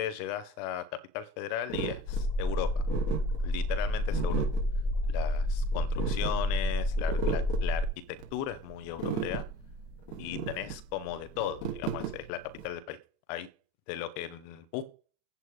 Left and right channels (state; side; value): late; right; 38 ms